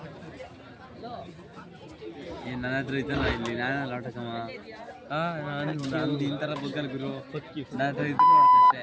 ನನ್ನ ಹತ್ರ ಐತಲ್ಲ ಇಲ್ಲಿ ನಾನು ಆಟಕಮ್ಮ ನಾನು ಇಂಥರ ಬಗ್ಗಲ್ ಗುರು ನನ್ನ ಹತ್ರ ಇದ್ದು ನೋಡ್ತಷ್ಟೇ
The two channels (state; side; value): identical; both; correlation 1.00